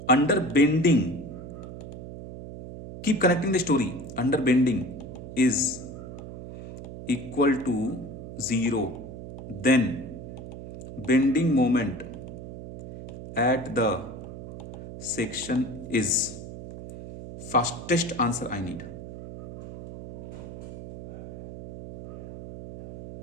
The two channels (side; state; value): right; noise; hum, 11 dB below the sound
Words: under bending, keep connecting the story, under bending is equal to 0, then bending moment at the section is fastest answer I need.